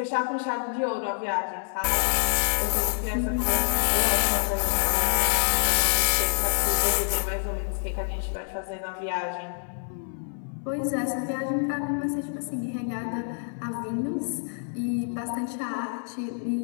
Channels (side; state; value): right; silent; 60 dB below the other